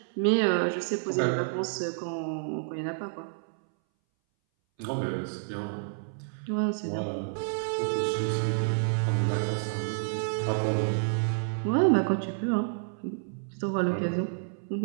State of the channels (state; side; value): silent; left; 58 dB below the other